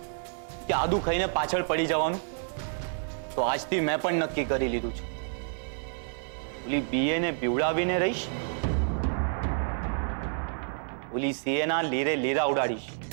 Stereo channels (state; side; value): silent; left; digital silence